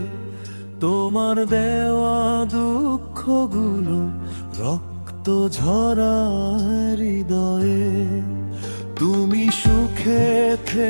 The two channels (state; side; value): inverted; both; correlation -1.00